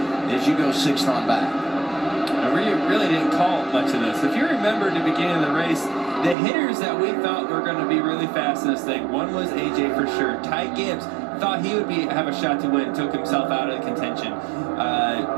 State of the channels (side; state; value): left; drops out; at 6.4 s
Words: as you go 6th on back. We really didn't call much of this. If you remember at the beginning of the race, the hitters that we thought were going to be really fast in this thing, one was AJ for sure. Ty Gibbs thought he would have a shot to win, took himself out of the contention.